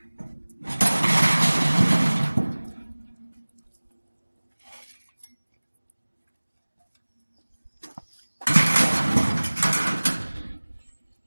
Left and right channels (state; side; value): inverted; both; correlation -1.00